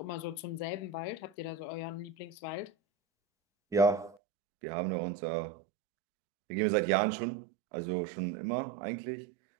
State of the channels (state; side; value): drops out; left; at 4.2 s